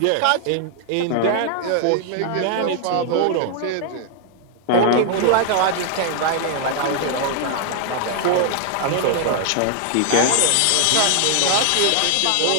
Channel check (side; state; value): both; different; correlation 0.00